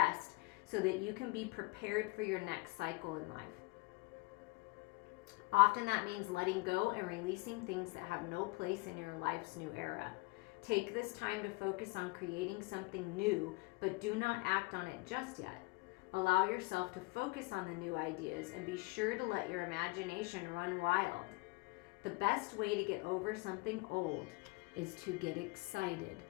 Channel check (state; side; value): quieter; right; 24.2 dB